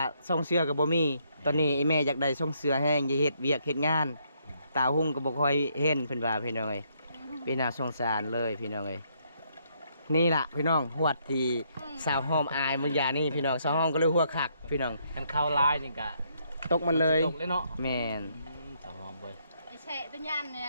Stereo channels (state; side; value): inverted; both; correlation -0.72